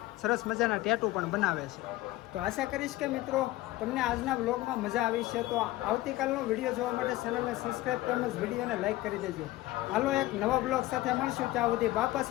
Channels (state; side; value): quieter; right; 17.4 dB